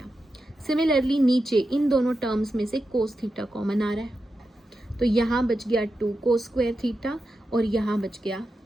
सिमिलरली नीचे इन दोनों टर्म्स में से कोस थीटा कॉमन आ रहा है, तो यहाँ बच गया 2 कोस स्क्वायर थीटा और यहाँ बच गया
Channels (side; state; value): both; normal; correlation 0.89